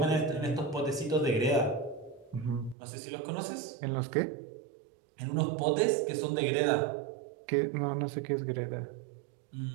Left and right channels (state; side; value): drops out; left; at 2.8 s